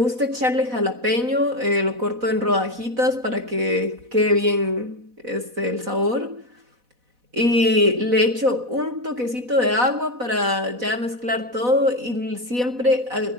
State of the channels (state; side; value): late; left; 4.1 ms